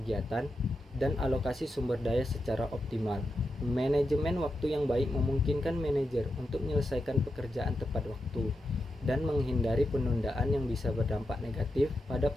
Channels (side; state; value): both; normal; correlation 0.88